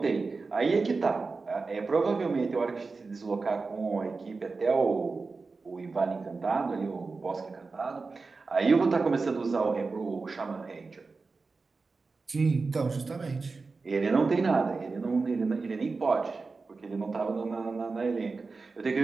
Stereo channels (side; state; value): left; quieter; 4.2 dB